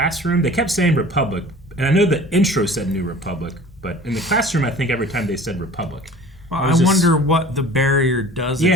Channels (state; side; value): normal; both; correlation 0.44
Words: They kept saying Republic, and I know the intro said New Republic, but in the classroom, I think every time they said Republic. Well, I wonder what the barrier does.